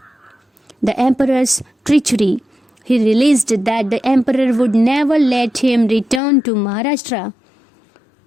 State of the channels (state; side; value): drops out; right; at 6.2 s